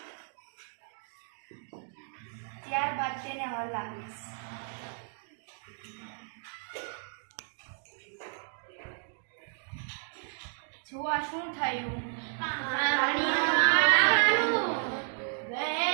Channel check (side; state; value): left; silent; 56 dB below the other